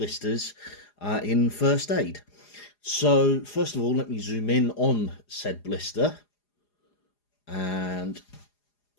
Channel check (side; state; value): right; late; 4.9 ms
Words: in first aid. So, first of all, let me zoom in on said blister, and